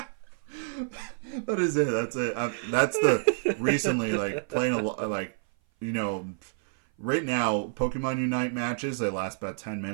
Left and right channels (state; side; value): silent; left; 56 dB below the other